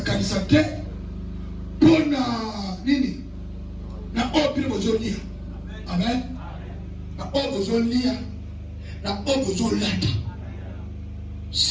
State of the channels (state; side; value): identical; both; correlation 1.00